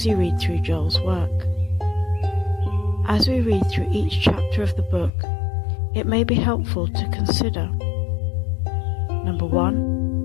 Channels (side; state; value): right; drops out; at 5.1 s